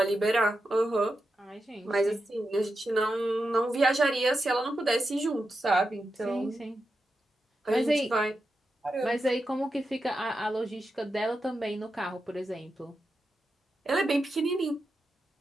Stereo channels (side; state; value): both; normal; correlation 0.89